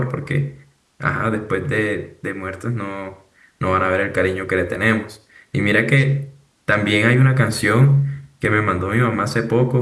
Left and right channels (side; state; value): both; identical; correlation 1.00